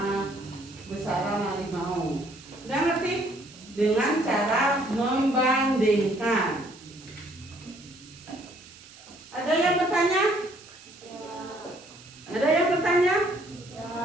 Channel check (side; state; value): right; noise; hiss, 21 dB below the sound